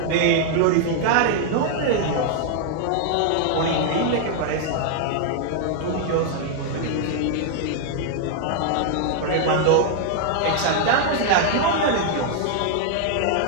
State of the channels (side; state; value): both; different; correlation 0.00